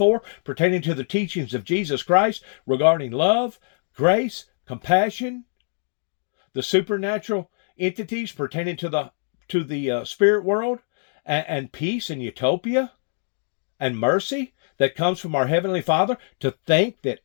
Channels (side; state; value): right; silent; digital silence